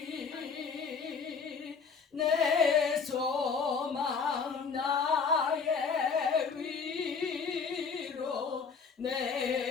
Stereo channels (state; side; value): quieter; right; 5.5 dB